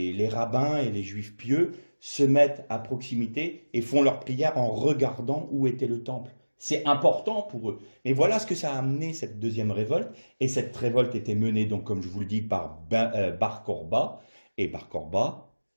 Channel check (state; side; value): inverted; both; correlation -1.00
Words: rabbins et les Juifs pieux se mettent à proximité et font leur prière en regardant où était le temple. C'est important pour eux. Mais voilà ce que ça a amené, cette deuxième révolte. Et cette révolte était menée, donc, comme je vous le dis, par Bar Kourba. Et Bar Kourba